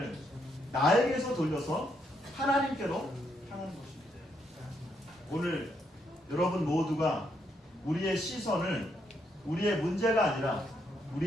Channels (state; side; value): normal; both; correlation 0.76